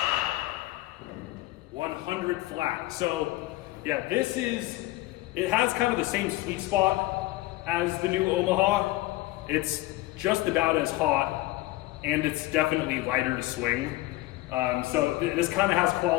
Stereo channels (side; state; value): right; quieter; 18.5 dB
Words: 100 flat. So yeah, it has kind of the same sweet spot as the new Omaha. It's just about as hot and it's definitely lighter to swing. So this kind of has